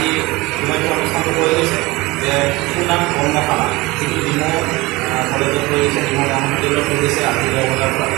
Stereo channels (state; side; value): quieter; left; 21.9 dB